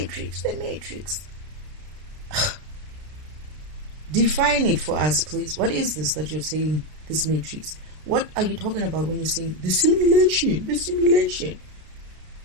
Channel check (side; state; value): left; late; 33 ms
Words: the Matrix. Define it for us, please. What is this that you're saying, this Matrix? What are you talking about when you're saying the simulation, the simulation?